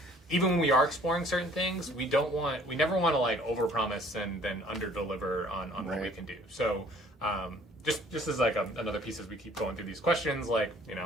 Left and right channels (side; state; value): both; normal; correlation 0.56